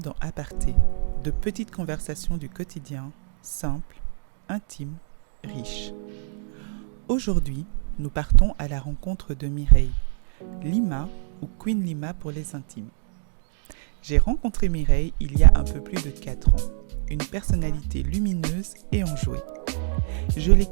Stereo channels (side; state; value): left; silent; digital silence